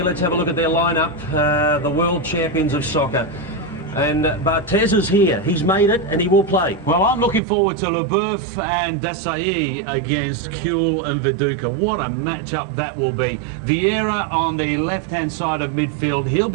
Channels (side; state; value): left; drops out; at 7.4 s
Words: Let's have a look at their lineup. The world champions of soccer. And Barthez is here. He's made it and he will play. Well, I'm looking forward to Leboeuf and Desailly against Kuehl and Viduka. What a matchup that will be. Vieira on the left-hand side of midfield. He'll